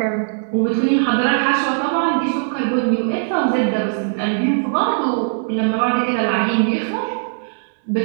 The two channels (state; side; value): silent; left; digital silence